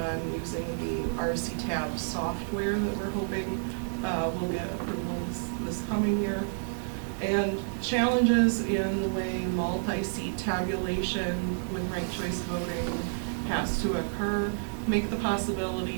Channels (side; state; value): left; silent; digital silence